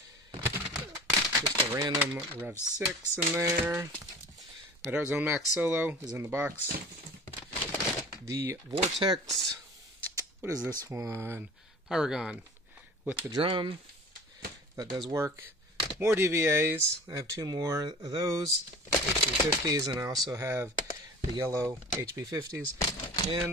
just a random Rev 6 in there. My Dart Zone Max Solo is in the box. The Vortex, what is this one? Pyragon with the drum. That does work. More DVAs. I have 2 more of those, HB50s, and I also have the yellow HB50s.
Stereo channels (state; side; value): normal; both; correlation 0.41